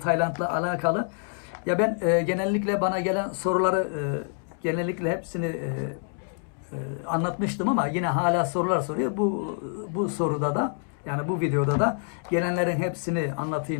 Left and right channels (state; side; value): silent; right; 57 dB below the other